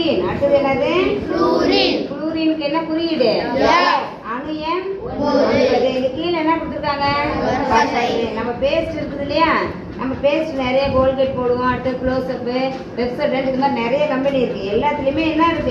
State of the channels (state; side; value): identical; both; correlation 1.00